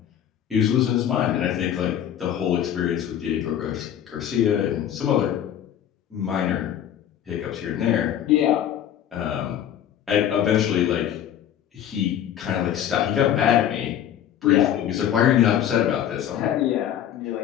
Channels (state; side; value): quieter; right; 10.3 dB